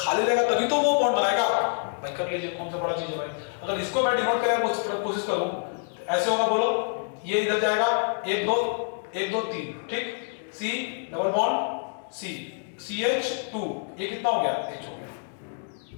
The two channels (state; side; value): silent; right; 60 dB below the other